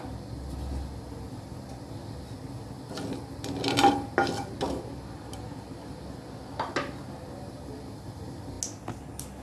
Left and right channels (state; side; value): identical; both; correlation 1.00